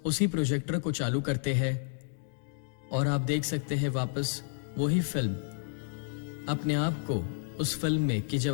उसी प्रोजेक्टर को चालू करते हैं और आप देख सकते हैं वापस वही फिल्म, अपने आप को उस फिल्म में कि जब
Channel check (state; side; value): silent; right; digital silence